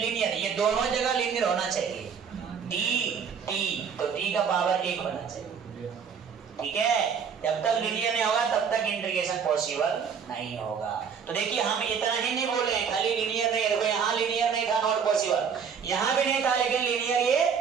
ये दोनों जगह लीनियर होना चाहिए, टी टी, तो टी का पावर 1 होना चाहिए, ठीक है। जब तक लीनियर नहीं होगा तब तक इंटीग्रेशन पॉसिबल नहीं होगा। तो देखिए हम इतना ही नहीं बोले खाली लीनियर नहीं, देखो यहाँ लीनियर नहीं था नॉट पॉसिबल, यहाँ भी नहीं था लेकिन लीनियर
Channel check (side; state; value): left; quieter; 6.7 dB